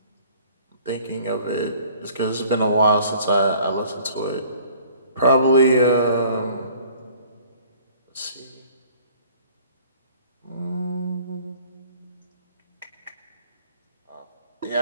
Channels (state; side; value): inverted; both; correlation -0.53